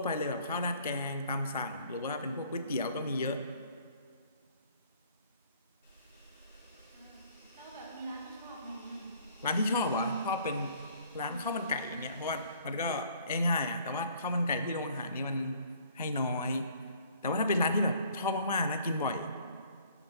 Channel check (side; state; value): both; inverted; correlation -0.57